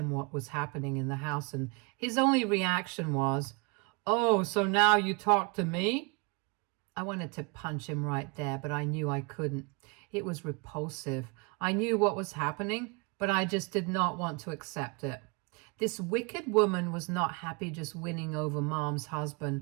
what was happening in the house, and his only reaction was, "Oh, so now you talk to me?" I wanted to punch him right there, but I knew I couldn't. It was repulsive. I knew what was happening, but I just did not want to accept it. This wicked woman was not happy just winning over Mom's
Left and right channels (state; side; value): quieter; left; 30.2 dB